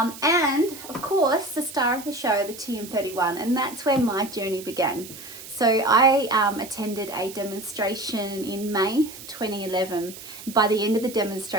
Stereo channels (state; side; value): noise; right; hiss, 14 dB below the sound